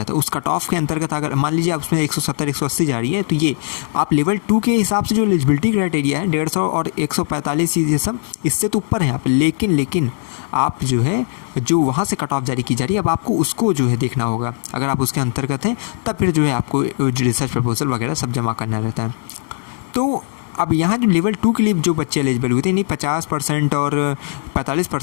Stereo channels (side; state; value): right; silent; digital silence